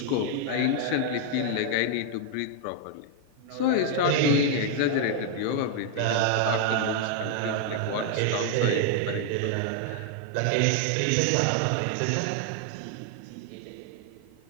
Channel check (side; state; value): both; different; correlation 0.00